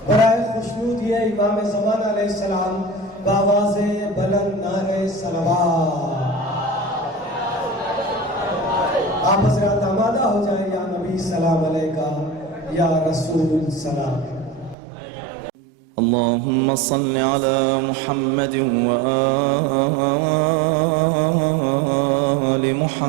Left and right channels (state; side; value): drops out; left; at 14.8 s